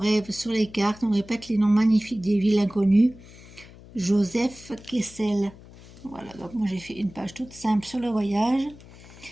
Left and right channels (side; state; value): left; noise; hum, 20 dB below the sound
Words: sur les cartes, on répète les noms magnifiques des villes inconnues. Joseph Kessel. Voilà, donc moi j'ai fait une page toute simple sur le voyage.